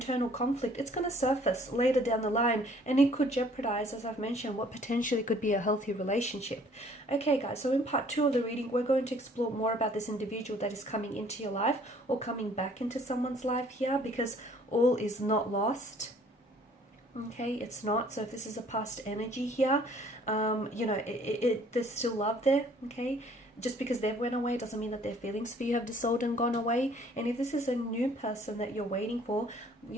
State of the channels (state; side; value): normal; both; correlation 0.57